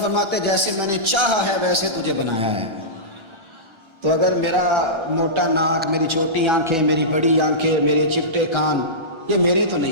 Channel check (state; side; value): late; left; 1.3 ms